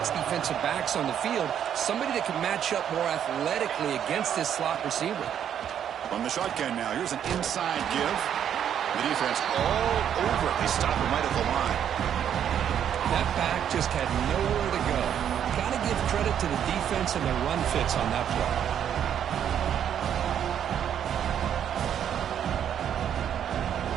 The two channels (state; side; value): quieter; left; 9.3 dB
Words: defensive backs on the field, somebody that can match up more athletically against this slot receiver. On the shotgun now, here's an inside give. The defense all over it. They stop him right at the line. That back just had nowhere to go. Got to give credit to the defense and the run fits on that play.